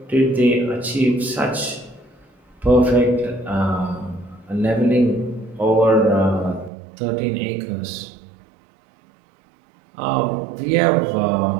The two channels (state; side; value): drops out; left; at 6.7 s